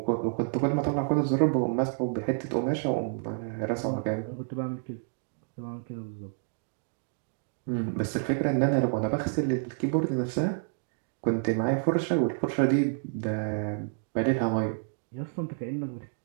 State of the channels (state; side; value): silent; left; digital silence